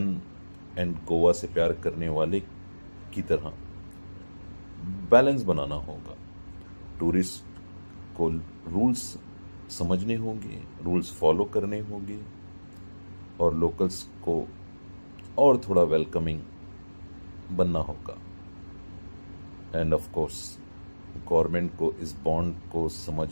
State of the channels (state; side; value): inverted; both; correlation -1.00